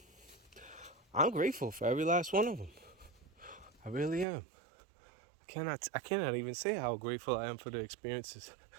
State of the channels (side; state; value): left; drops out; at 4.2 s